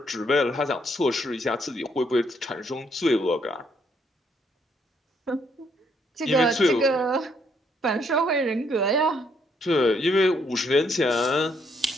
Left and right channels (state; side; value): normal; both; correlation 0.71